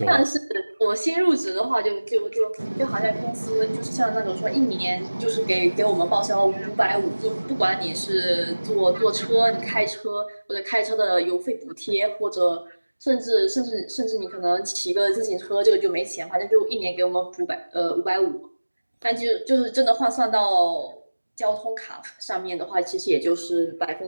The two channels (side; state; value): both; inverted; correlation -1.00